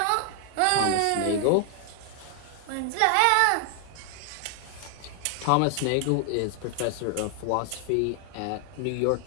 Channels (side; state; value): both; different; correlation 0.00